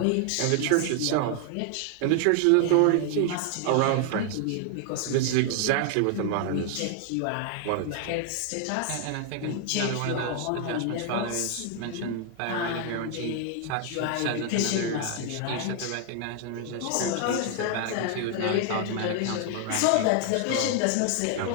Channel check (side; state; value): both; different; correlation 0.00